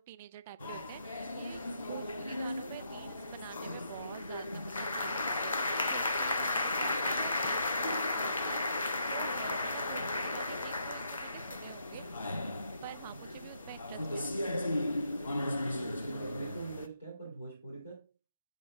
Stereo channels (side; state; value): both; inverted; correlation -0.76